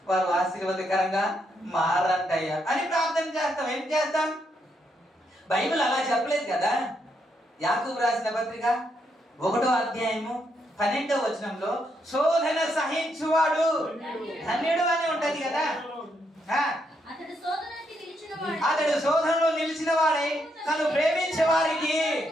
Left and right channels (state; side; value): normal; both; correlation 0.78